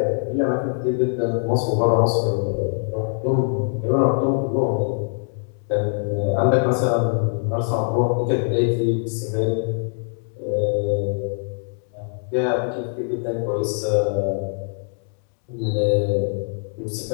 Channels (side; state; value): right; silent; digital silence